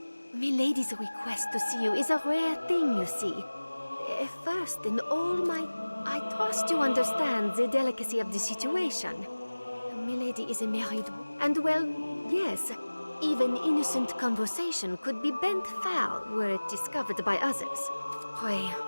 Milady's request to see you is a rare thing, you see. First, in all my... I trust you understand the delicacy of the situation. Milady is a married... And well, yes, even innocent conversation could be bent foul were it discovered by others. Pray,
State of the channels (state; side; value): inverted; both; correlation -1.00